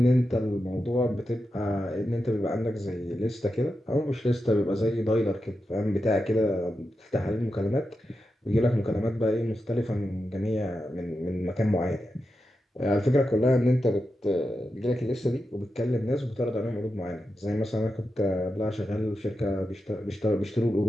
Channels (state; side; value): normal; both; correlation 0.89